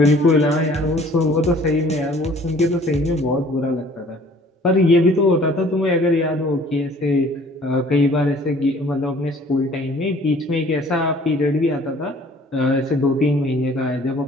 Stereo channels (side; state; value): both; normal; correlation 0.54